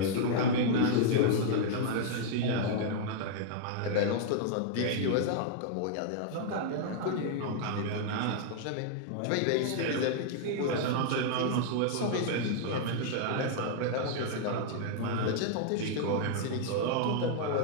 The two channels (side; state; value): both; different; correlation -0.01